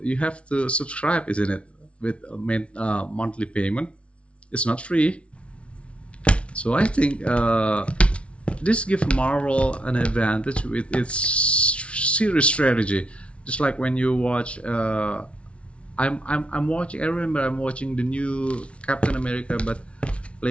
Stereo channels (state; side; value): late; right; 0.061 ms